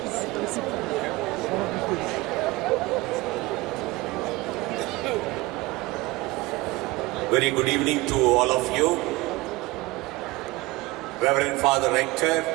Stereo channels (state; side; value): quieter; left; 21.4 dB